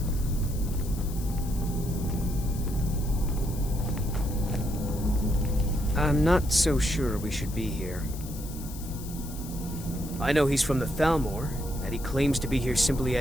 I'm not so sure we should be here. I know he's from the Thalmor, and that he claims to be here simply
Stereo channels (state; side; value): noise; left; hiss, 15 dB below the sound